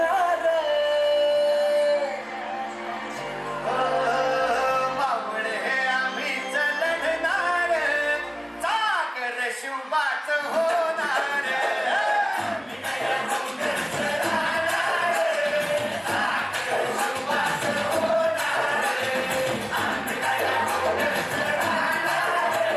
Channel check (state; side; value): identical; both; correlation 1.00